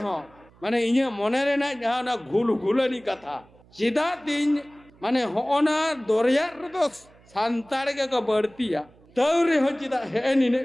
हो माने इन्हें मोने रे ना जहाँ ना घुलनी कथा चिदा तीन माने होना दोरिया तो सांताड़ के का बढ़तिया तौरे हो चिदा है नी ने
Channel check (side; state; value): right; noise; hum, 28 dB below the sound